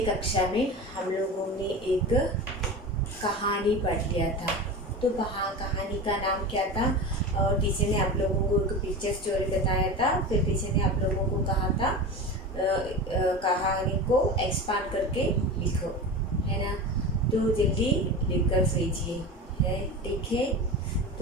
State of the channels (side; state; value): both; normal; correlation 0.28